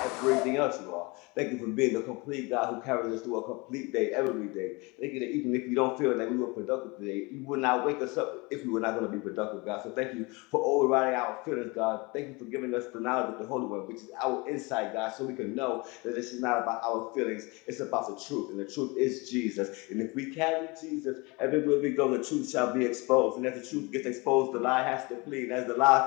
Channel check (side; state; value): right; quieter; 26.4 dB